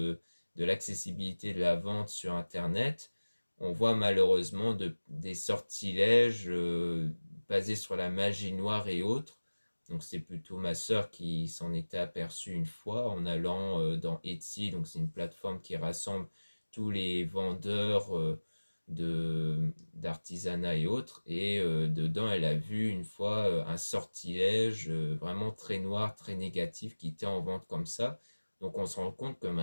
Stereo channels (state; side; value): inverted; both; correlation -1.00